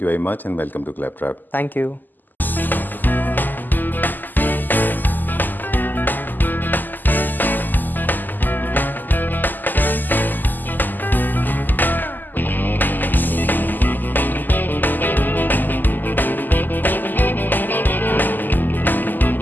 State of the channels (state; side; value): late; right; 0.087 ms